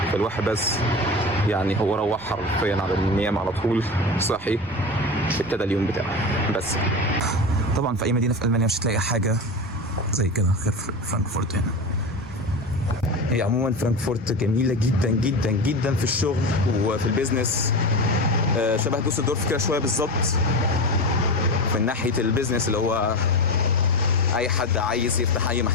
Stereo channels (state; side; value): noise; right; rumble, 21 dB below the sound